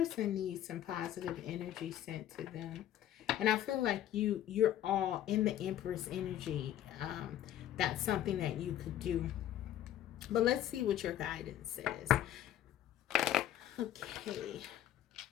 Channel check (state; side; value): quieter; right; 11.8 dB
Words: needs some positive energy sent to them. And I feel like you're all in the Empress energy. That's something that you could do. But let's see what your guidance says. Okay.